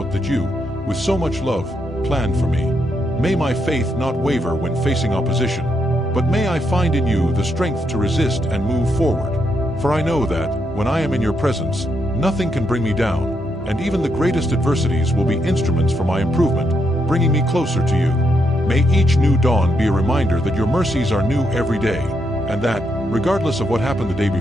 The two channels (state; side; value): normal; both; correlation 0.79